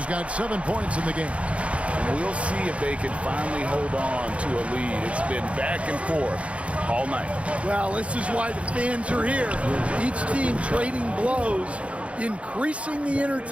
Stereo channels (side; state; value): left; late; 0.062 ms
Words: got 7 points in the game. And we'll see if they can finally hold on to a lead. It's been back and forth all night. Well, this is why the fans are here. Each team trading blows, increasing the